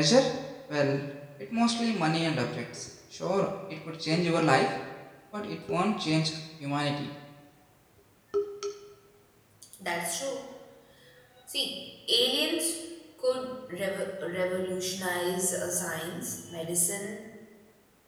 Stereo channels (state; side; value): identical; both; correlation 1.00